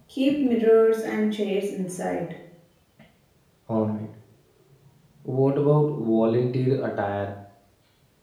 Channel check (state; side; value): identical; both; correlation 1.00